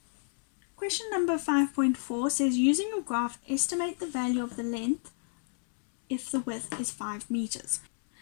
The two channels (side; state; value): right; silent; 58 dB below the other